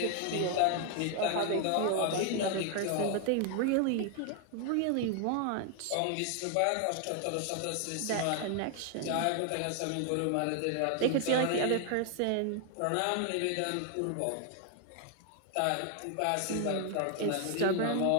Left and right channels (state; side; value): different; both; correlation 0.00